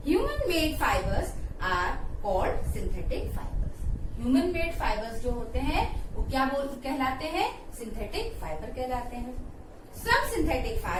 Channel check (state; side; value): identical; both; correlation 1.00